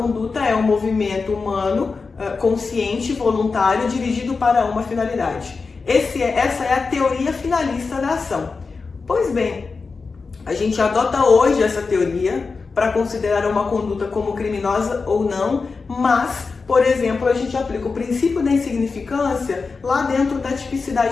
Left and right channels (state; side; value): quieter; right; 4.5 dB